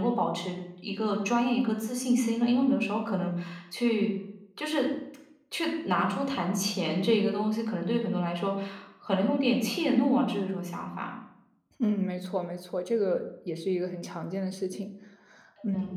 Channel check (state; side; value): identical; both; correlation 1.00